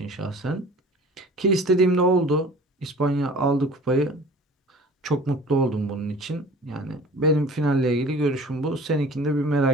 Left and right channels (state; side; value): normal; both; correlation 0.45